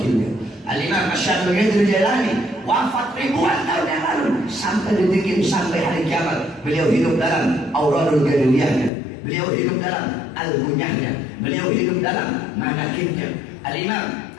Al-Imam Asy-Syadzili Jailani wafat ribuan tahun yang lalu. Sampai detik ini, sampai hari kiamat, beliau hidup dalam Auradul Gaduliyahnya, beliau hidup dalam Al-Gunyahnya, beliau hidup dalam Manakibnya. Al-Imam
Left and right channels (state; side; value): drops out; right; at 8.9 s